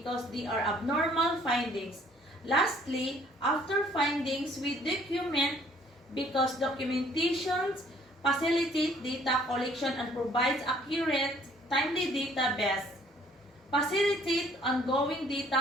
they are abnormal findings. Lastly, after findings, we document because documentations facilitate data collection and provides accurate, timely database. Facilitate ongoing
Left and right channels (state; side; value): normal; both; correlation 0.60